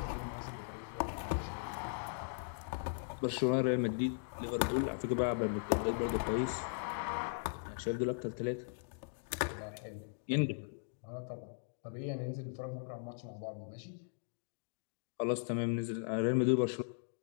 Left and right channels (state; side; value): silent; right; digital silence